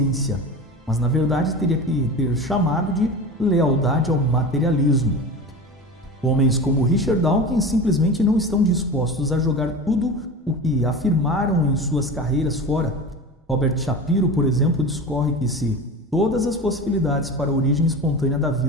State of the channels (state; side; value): normal; both; correlation 0.30